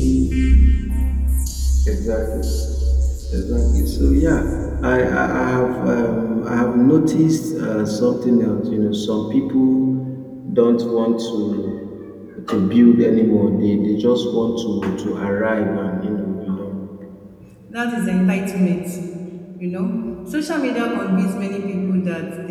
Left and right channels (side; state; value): both; identical; correlation 1.00